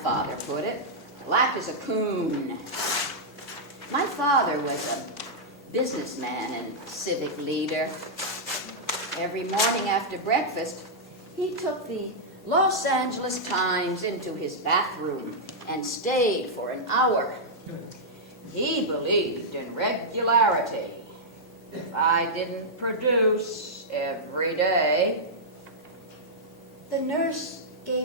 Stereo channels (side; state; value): both; normal; correlation -0.08